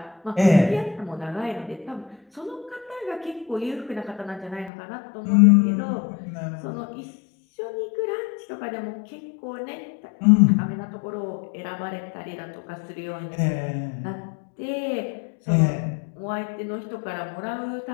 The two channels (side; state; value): right; drops out; at 4.7 s